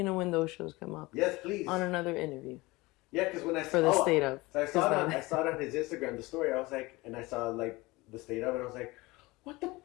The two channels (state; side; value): quieter; right; 21.9 dB